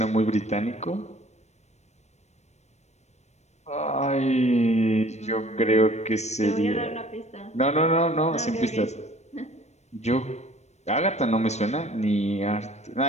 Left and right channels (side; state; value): right; late; 0.32 ms